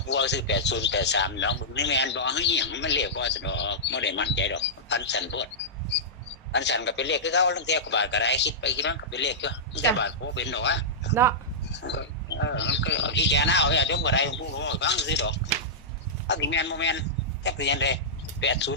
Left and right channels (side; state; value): both; normal; correlation -0.13